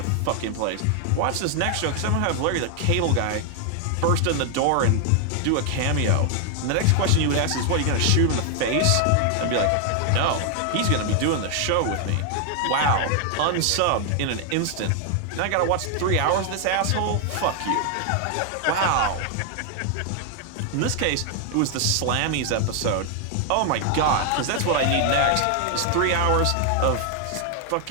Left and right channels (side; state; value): both; different; correlation 0.00